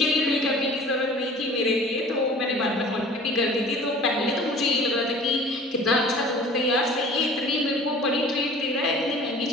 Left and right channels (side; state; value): both; normal; correlation 0.46